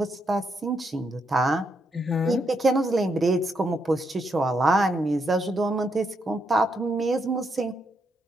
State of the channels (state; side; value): normal; both; correlation 0.79